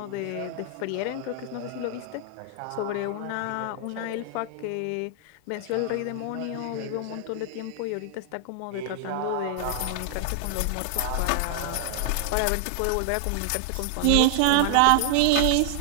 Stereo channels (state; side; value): different; both; correlation 0.00